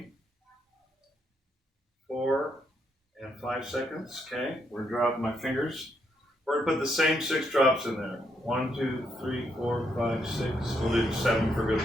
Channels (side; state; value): both; normal; correlation 0.77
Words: 4, and 5 seconds. Okay, we're dropping my fingers. We're going to put the same 6 drops in there. 1, 2, 3, 4, 5, 6. We'll do 7 for